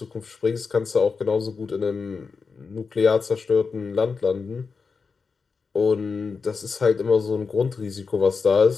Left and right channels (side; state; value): right; quieter; 5.0 dB